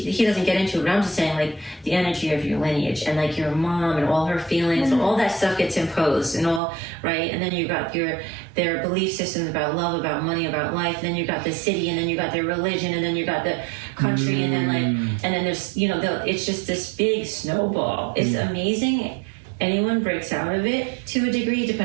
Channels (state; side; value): drops out; left; at 6.6 s